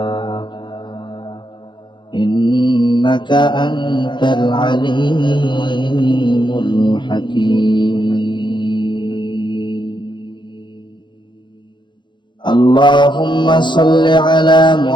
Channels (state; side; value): late; right; 0.23 ms